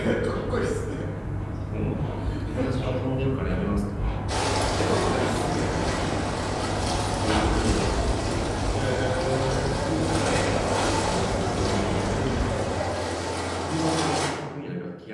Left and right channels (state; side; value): identical; both; correlation 1.00